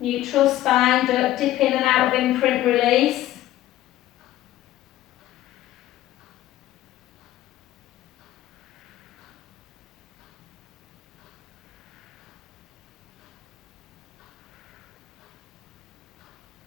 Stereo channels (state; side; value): quieter; right; 14.4 dB